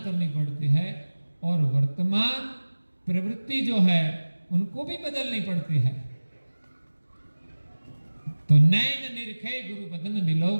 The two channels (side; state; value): both; inverted; correlation -1.00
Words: पड़ती है, और वर्तमान प्रवृत्ति जो है उनको भी बदलनी पड़ती है। तो नैन निरखे गुरु बदन बिलो